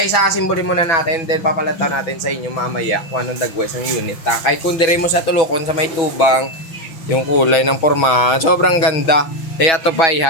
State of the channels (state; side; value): late; right; 6.2 ms